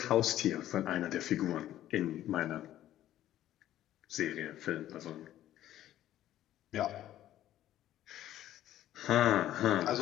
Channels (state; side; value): quieter; right; 12.9 dB